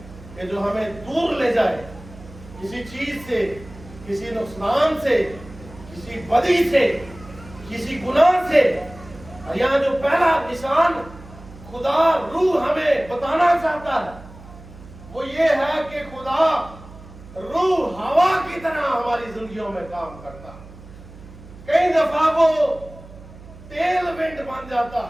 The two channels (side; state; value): right; noise; hum, 18 dB below the sound